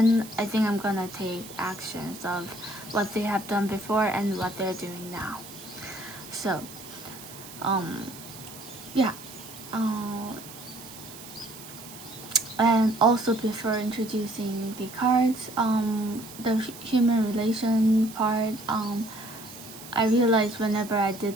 I think I'm gonna take actions of what they have done before and what they're doing now. So, yeah. And also, before introducing the cards, the human relation part, I realized whenever I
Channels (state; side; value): noise; right; hiss, 15 dB below the sound